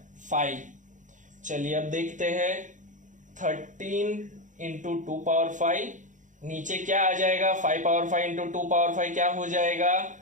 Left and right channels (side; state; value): left; late; 0.36 ms